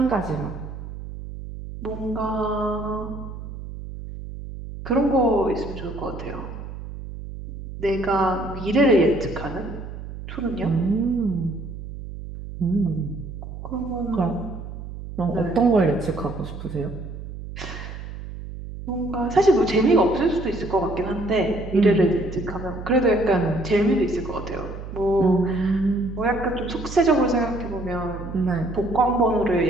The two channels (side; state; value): right; noise; hum, 10 dB below the sound